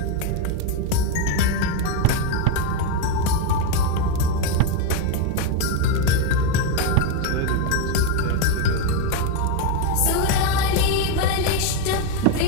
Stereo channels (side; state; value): both; different; correlation 0.02